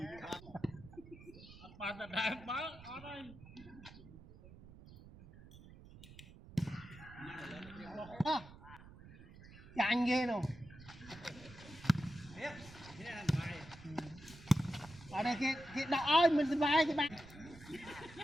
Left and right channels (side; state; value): right; noise; rumble, 18 dB below the sound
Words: bạn là đại báo ở đây chẳng ghê đâu ở đây cái đỏ ơi mình sẽ bay cái bạn